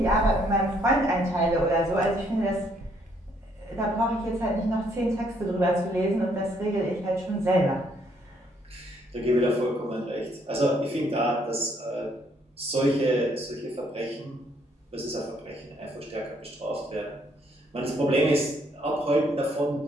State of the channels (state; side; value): normal; both; correlation 0.68